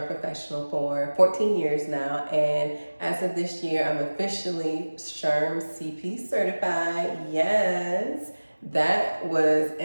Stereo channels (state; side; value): inverted; both; correlation -1.00